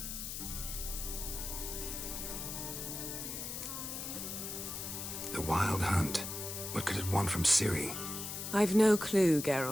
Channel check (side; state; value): left; noise; hiss, 6 dB below the sound